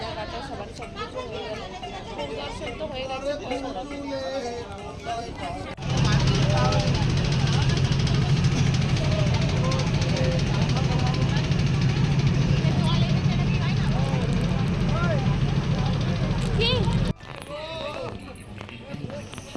সবার সব কিছু হয়ে গেল, পরিদর্শন তো হয়ে গেছে।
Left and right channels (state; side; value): identical; both; correlation 1.00